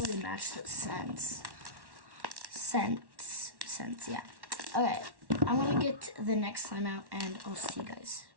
match the scents, yeah. Okay, I'm gonna get the next slime out, and I'll see you guys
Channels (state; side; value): late; left; 1.1 ms